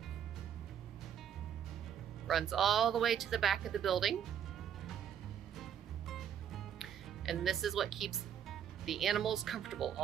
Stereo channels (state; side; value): quieter; left; 9.0 dB